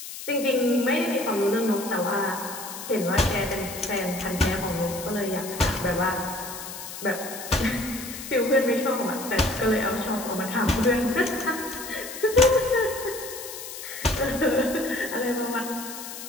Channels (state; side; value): noise; left; hiss, 10 dB below the sound